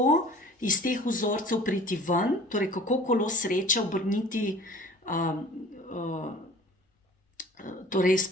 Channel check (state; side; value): normal; both; correlation 0.46